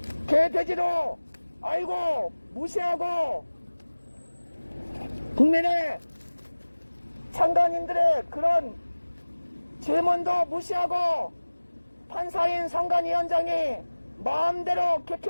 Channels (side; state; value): both; inverted; correlation -1.00